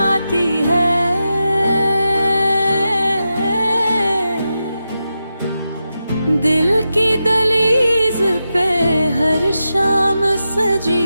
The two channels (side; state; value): both; inverted; correlation -0.89